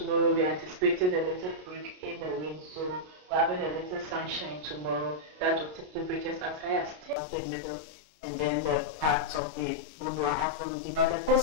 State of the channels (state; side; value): late; left; 33 ms